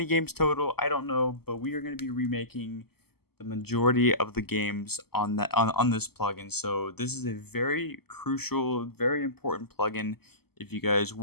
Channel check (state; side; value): late; right; 0.96 ms